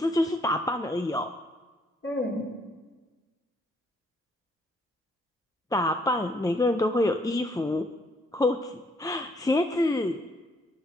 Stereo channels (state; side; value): normal; both; correlation 0.68